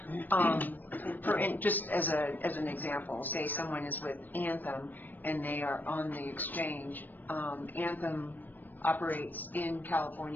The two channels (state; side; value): late; right; 0.089 ms